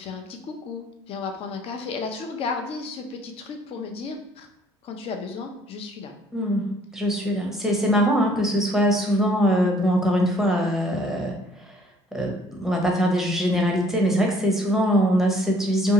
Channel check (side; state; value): both; normal; correlation 0.60